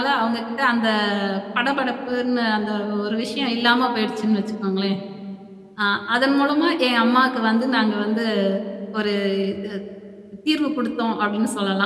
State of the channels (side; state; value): both; identical; correlation 1.00